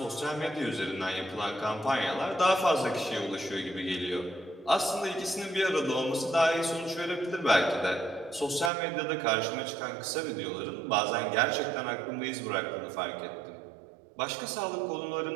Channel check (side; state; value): left; drops out; at 8.7 s